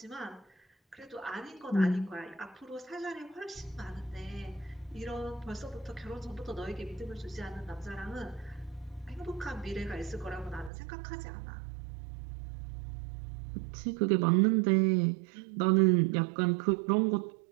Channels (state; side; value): drops out; left; at 10.7 s